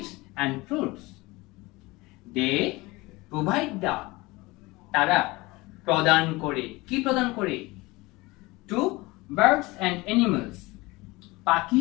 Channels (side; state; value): right; quieter; 22.2 dB